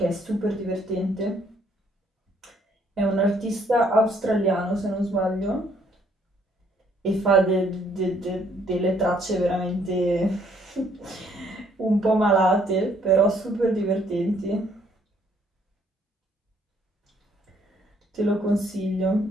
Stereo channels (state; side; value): normal; both; correlation 0.66